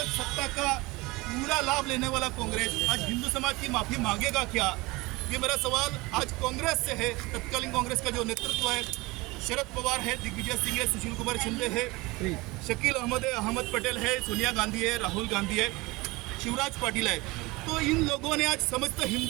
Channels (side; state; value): left; quieter; 22.9 dB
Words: सत्ता का पूरा लाभ लेने वाला कांग्रेस आज हिंदू समाज की माफी मांगेगा क्या? ये मेरा सवाल आज कांग्रेस से है। तत्कालीन कांग्रेस का जो नेतृत्व है, शरद पवार है, दिग्विजय सिंह है, सुशील कुमार शिंदे है, शकील अहमद है, अहमद पटेल है, सोनिया गांधी है, राहुल गांधी है, शिवराज पाटिल है। तो इन लोगों ने आज समस्त